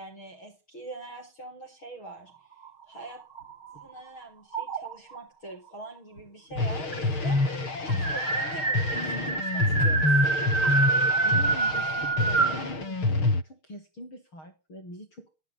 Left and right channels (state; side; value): late; right; 6.4 ms